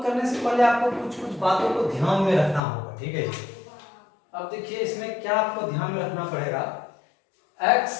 करने से पहले आपको कुछ बातों को ध्यान में रखना होगा। ठीक है जी, अब देखिए इसमें क्या आपको ध्यान में रखना पड़ेगा,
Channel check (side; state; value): right; drops out; at 2.6 s